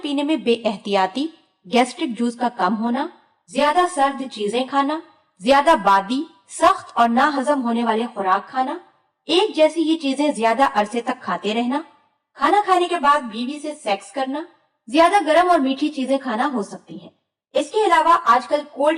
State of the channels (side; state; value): both; identical; correlation 1.00